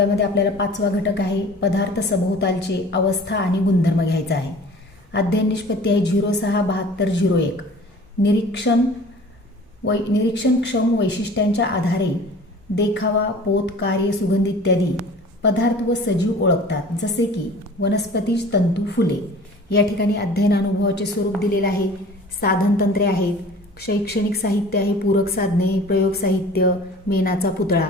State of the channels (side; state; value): both; normal; correlation 0.44